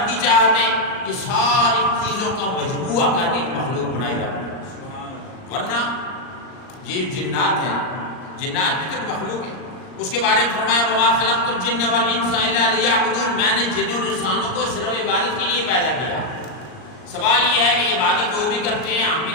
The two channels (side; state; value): right; late; 39 ms